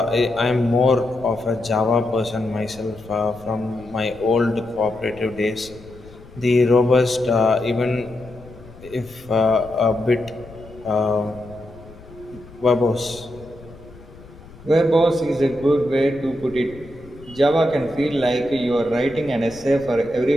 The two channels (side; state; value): left; noise; rumble, 20 dB below the sound